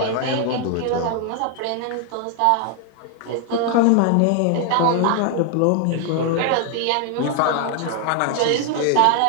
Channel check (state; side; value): different; both; correlation 0.00